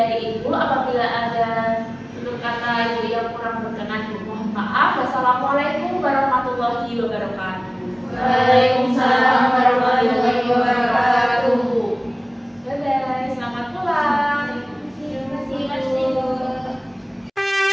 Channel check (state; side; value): identical; both; correlation 1.00